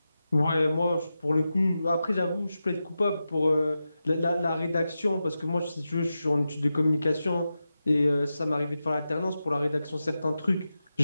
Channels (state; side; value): inverted; both; correlation -0.91